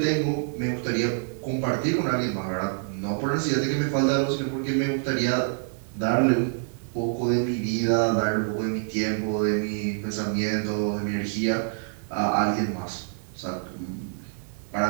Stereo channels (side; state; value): left; silent; digital silence